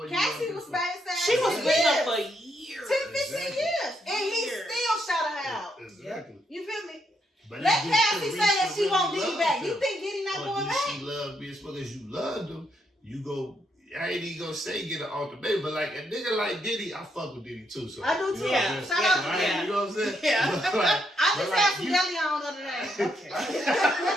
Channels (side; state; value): both; normal; correlation 0.77